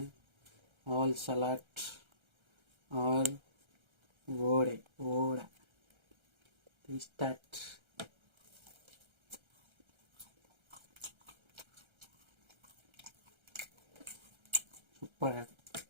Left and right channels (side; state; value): left; late; 1.3 ms